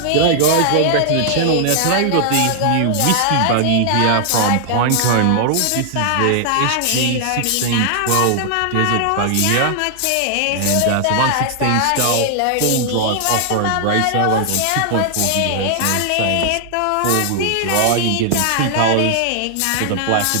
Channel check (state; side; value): different; both; correlation 0.00